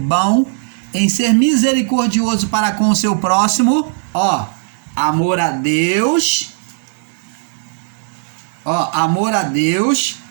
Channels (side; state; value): left; silent; 63 dB below the other